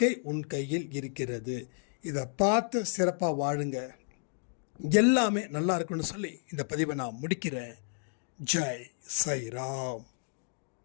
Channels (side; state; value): right; silent; digital silence